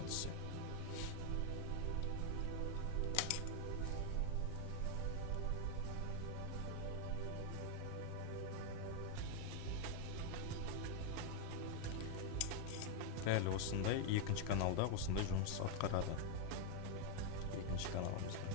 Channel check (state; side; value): different; both; correlation 0.00